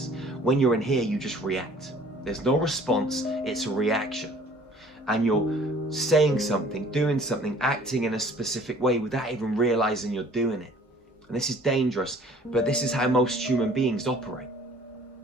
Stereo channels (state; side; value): normal; both; correlation 0.52